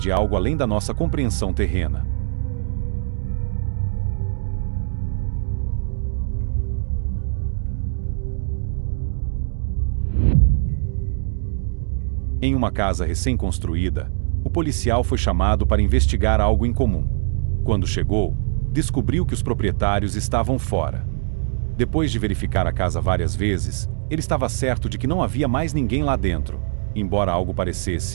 algo além da nossa compreensão terrena. Em uma casa recém-construída, o policial foi chamado para investigar algo incomum. Quando chegou, descobriu que os proprietários estavam fora. Depois de verificar a casa várias vezes, ele estava certo de que não havia mais ninguém lá dentro, embora algo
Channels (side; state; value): left; silent; digital silence